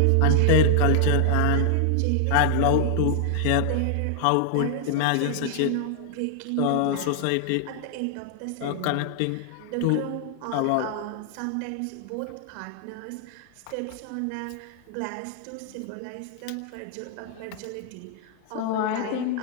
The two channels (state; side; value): different; both; correlation 0.00